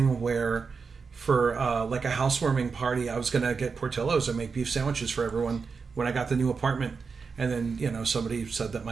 where for like a housewarming party, I was going to get Portillo's and make beef sandwiches for everyone when I got the new apartment. And then, somebody said that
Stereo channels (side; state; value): left; quieter; 5.2 dB